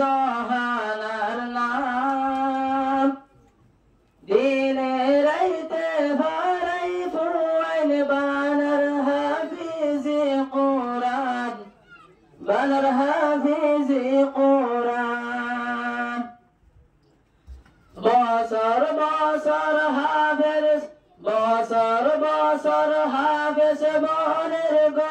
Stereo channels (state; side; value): identical; both; correlation 1.00